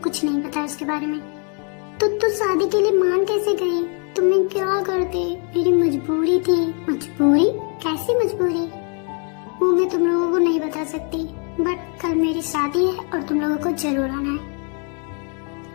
नहीं पता उसके बारे में। तो तू शादी के लिए मान कैसे गई? तुम्हें क्या करते? मेरी मजबूरी थी। मजबूरी? कैसी मजबूरी? वो मैं तुम लोगों को नहीं बता सकती, बट कल मेरी शादी है और तुम लोगों को जरूर आना है।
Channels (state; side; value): quieter; right; 39.3 dB